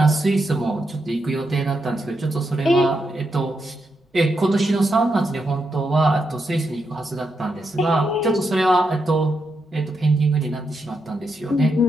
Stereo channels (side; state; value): both; normal; correlation 0.83